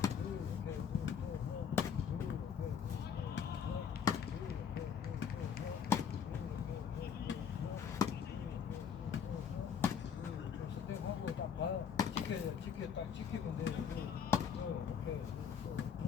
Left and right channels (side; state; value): right; quieter; 7.4 dB